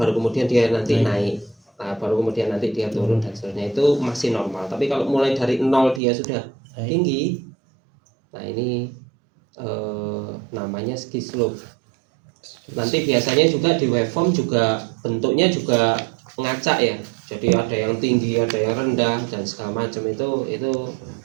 kemudian dia nanti naik. Nah, baru kemudian nanti dia turun dan seterusnya, itu masih normal. Tapi kalau mulai dari 0 dia sudah tinggi, nah ini namanya ski slope. Nanti biasanya juga di waveform juga bentuknya juga ngacak ya. Jadi ada yang tinggi, ada yang rendah dan segala macam, itu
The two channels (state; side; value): drops out; left; at 6.0 s